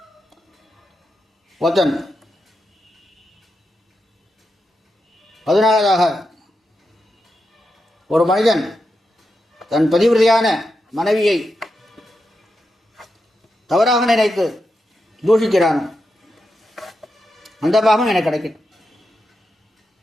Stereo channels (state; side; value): normal; both; correlation 0.87